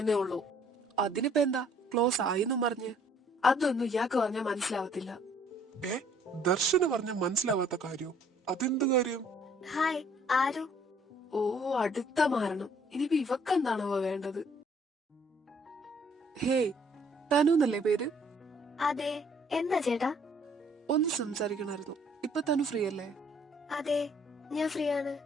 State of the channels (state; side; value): normal; both; correlation 0.61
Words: ഉള്ളൂ. അതിനിപ്പോ എന്താ, ക്ലോസ് ആയിന്നും പറഞ്ഞ് അതൊന്നും ഇയാൾക്ക് പറഞ്ഞാൽ മനസ്സിലാവത്തില്ല. ദർശന പറഞ്ഞ മനസ്സിലാവാത്ത കാര്യം? അതെന്ത് കാര്യം? ഹായ് ആരു. ഓ, അടുത്ത മാരണം. ഇനിയിപ്പോ ഇവക്കെന്താണോ വേണ്ടത്? ഹേയ്, തനുന്നല്ലേ പേര്? അതെ, എന്താ ചേട്ടാ? ഒന്ന് സംസാരിക്കണമായിരുന്നു. ഇപ്പൊ തനു ഫ്രീ അല്ലേ? അതെ, ഞാൻ ഫ്രീ ആണ്.